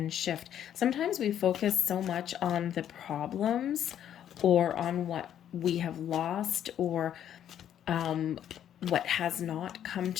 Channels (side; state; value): right; quieter; 10.2 dB